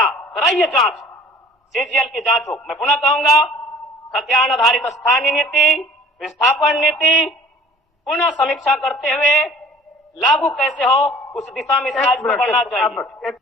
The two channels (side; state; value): both; normal; correlation 0.49